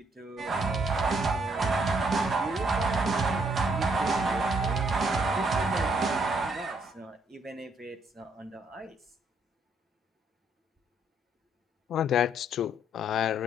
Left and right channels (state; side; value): normal; both; correlation 0.70